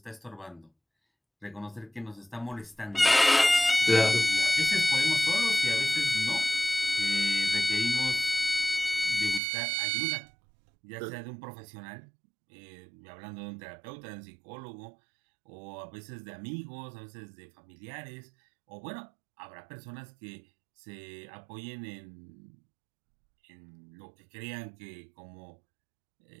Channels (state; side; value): drops out; left; at 9.4 s